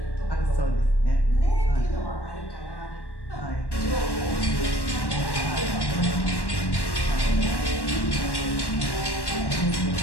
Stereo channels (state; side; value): late; right; 1.1 ms